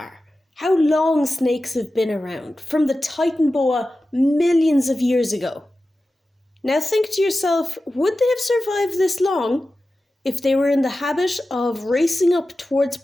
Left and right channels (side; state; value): both; normal; correlation 0.94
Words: How long snakes have been around, from the Titan boa millions of years ago. Now think to yourself, would they have survived this long if they were in the habit of racing up towards